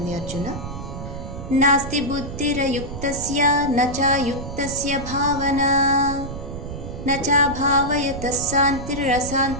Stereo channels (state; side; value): noise; right; rumble, 8 dB below the sound